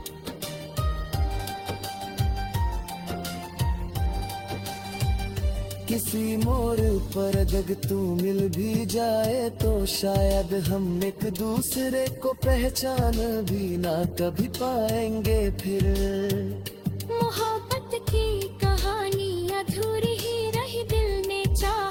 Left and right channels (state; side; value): identical; both; correlation 1.00